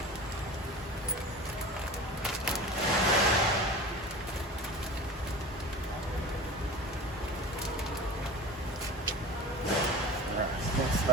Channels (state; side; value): normal; both; correlation 0.34